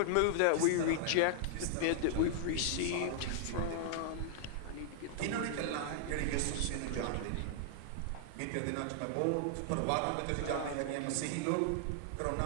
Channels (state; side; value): different; both; correlation -0.01